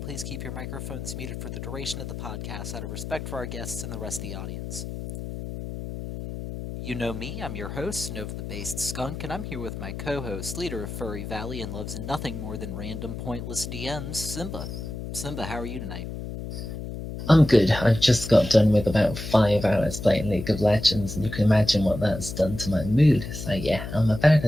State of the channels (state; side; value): noise; left; hum, 7 dB below the sound